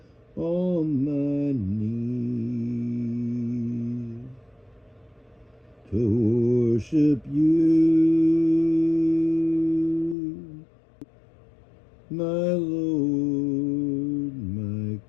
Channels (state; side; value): drops out; right; at 10.2 s